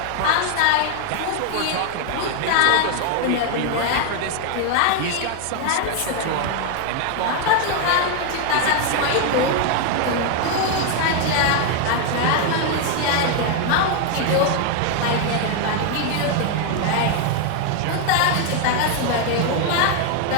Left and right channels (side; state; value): both; different; correlation 0.01